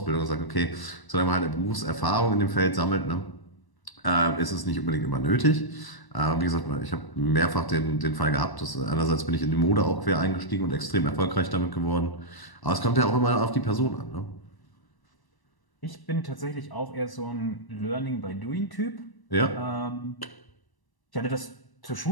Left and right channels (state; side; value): late; right; 1.0 ms